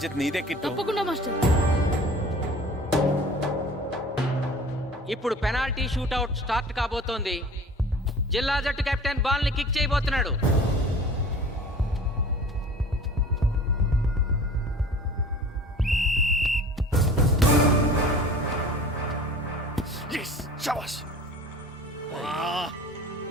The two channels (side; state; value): both; normal; correlation 0.44